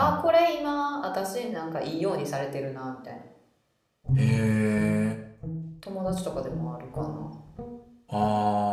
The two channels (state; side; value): identical; both; correlation 1.00